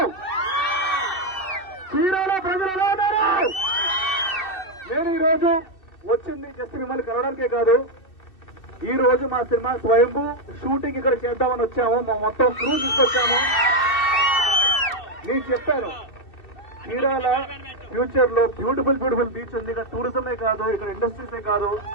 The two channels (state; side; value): late; right; 2.6 ms